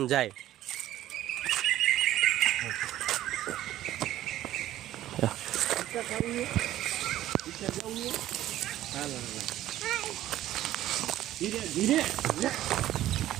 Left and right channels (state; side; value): quieter; left; 13.7 dB